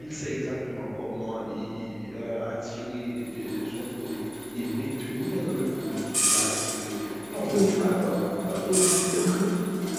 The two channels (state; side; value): noise; left; hum, 24 dB below the sound